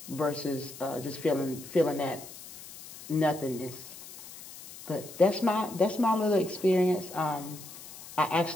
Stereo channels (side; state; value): left; noise; hiss, 15 dB below the sound